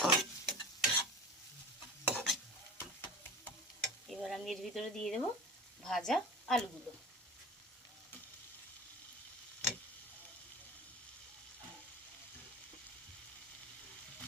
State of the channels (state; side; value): normal; both; correlation 0.34